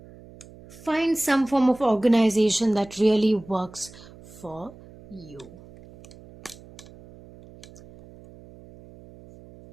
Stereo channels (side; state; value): right; noise; hum, 21 dB below the sound